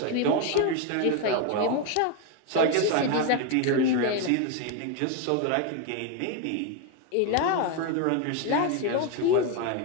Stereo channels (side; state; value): both; different; correlation 0.01